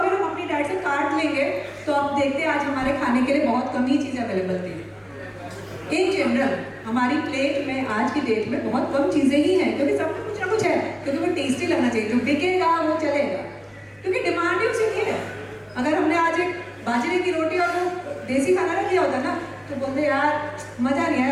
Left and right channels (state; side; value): identical; both; correlation 1.00